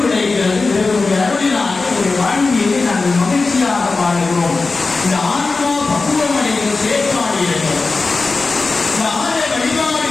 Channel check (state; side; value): quieter; right; 3.9 dB